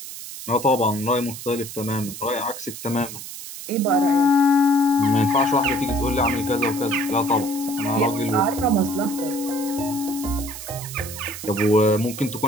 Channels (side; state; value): right; noise; hiss, 11 dB below the sound